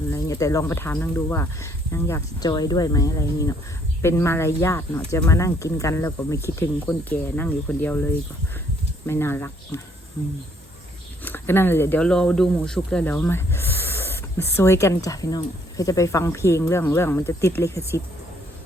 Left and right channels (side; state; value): both; normal; correlation 0.66